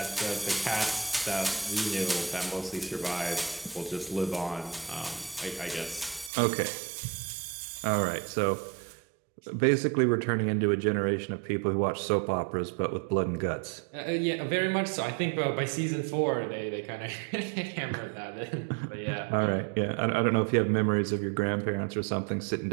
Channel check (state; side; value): drops out; left; at 6.3 s